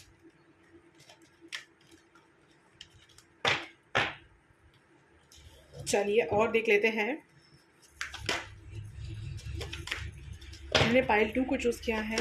चलिए और देख लेते हैं। हमने पाइल 2 को चूज़ किया है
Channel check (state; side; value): identical; both; correlation 1.00